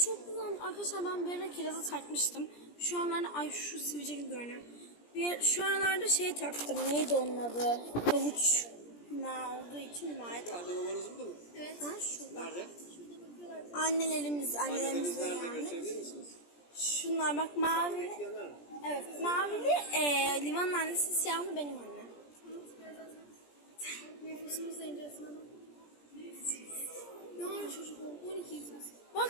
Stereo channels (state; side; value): late; right; 17 ms